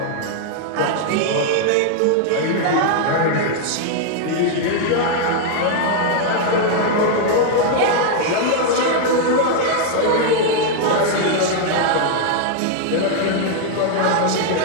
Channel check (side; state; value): both; different; correlation 0.00